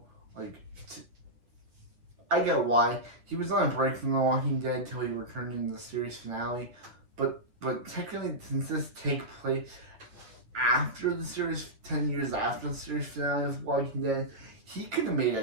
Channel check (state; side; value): late; left; 9.3 ms